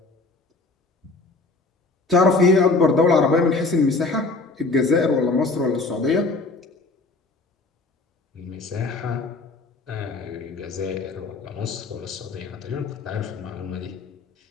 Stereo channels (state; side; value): quieter; right; 3.6 dB